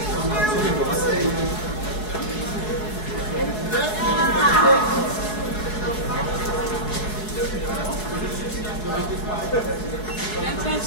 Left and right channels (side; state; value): right; late; 4.7 ms